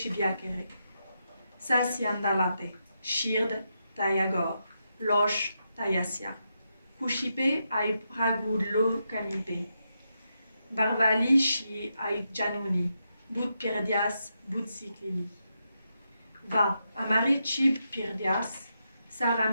Sasi andalate, shird tayagor, losh tayasia. Kushipe ai pragudlo kamipe. Barvali shi ai januni, but pirdias, but siklili. Va, amare chib pirdias,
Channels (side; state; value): both; inverted; correlation -0.84